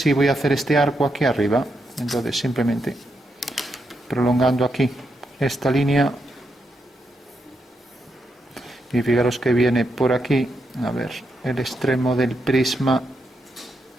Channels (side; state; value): both; normal; correlation 0.82